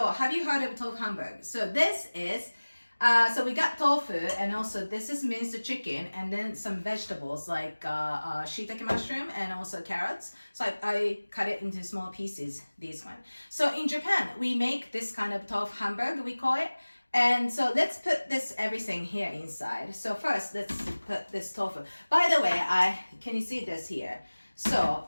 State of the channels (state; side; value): inverted; both; correlation -1.00